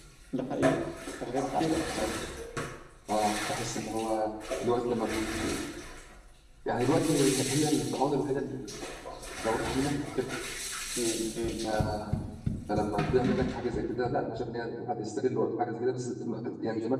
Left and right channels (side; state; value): both; identical; correlation 1.00